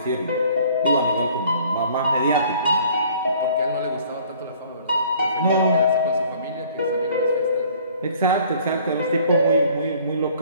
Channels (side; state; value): both; inverted; correlation -0.55